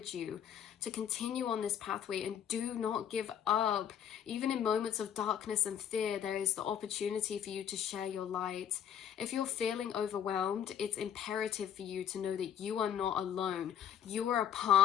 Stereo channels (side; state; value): right; quieter; 9.2 dB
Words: you to continue on this pathway and do not give up. Even in moments of darkness and fear, there is the opportunity for you to share your light. If you're feeling overwhelmed, it's imperative for you to know that you are not alone. You are a